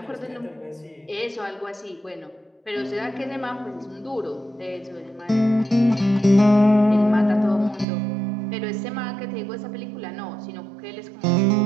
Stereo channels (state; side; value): drops out; left; at 7.9 s